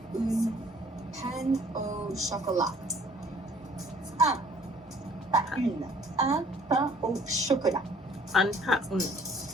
Pain au chocolat. Pas une. Un pain au chocolat.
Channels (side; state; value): both; normal; correlation 0.56